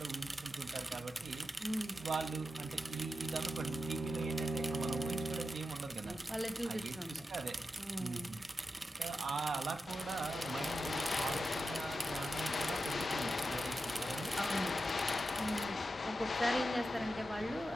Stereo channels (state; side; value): normal; both; correlation 0.90